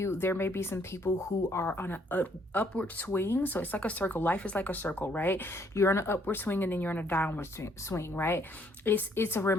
there may be some people who are on an upward swing. So it's like a circle. Life is like a circle, right? You're on an upward swing and then you're on a downward swing, right? It's a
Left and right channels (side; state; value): both; normal; correlation 0.67